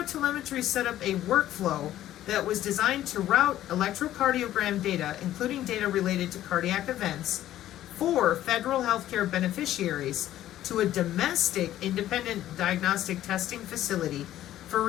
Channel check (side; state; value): right; quieter; 13.1 dB